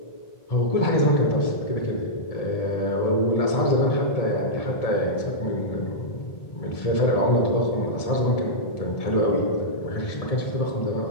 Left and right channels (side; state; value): right; late; 1.7 ms